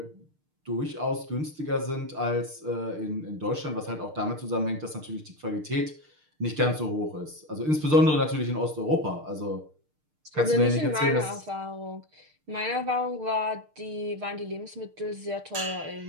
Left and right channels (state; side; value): late; left; 6.6 ms